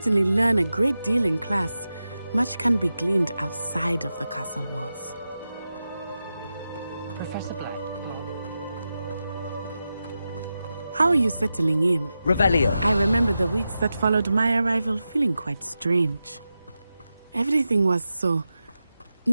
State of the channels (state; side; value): inverted; both; correlation -0.91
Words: learn a great deal in class, much can be gleaned outside of the castle walls. Professor Black. How are you settling in? Revelio. I remember the weeks that followed my arrival feeling quite strange. Everything was so